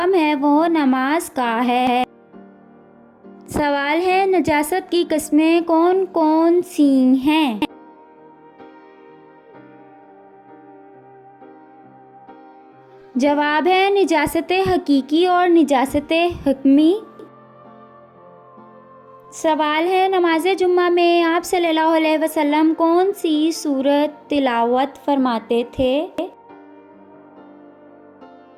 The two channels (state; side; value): identical; both; correlation 1.00